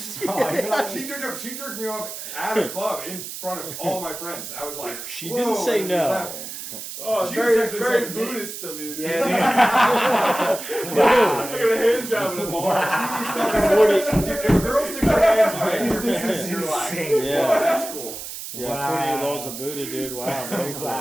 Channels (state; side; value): noise; right; hiss, 9 dB below the sound